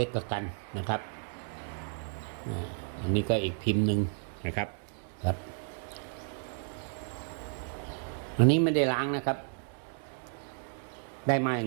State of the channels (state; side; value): silent; left; 56 dB below the other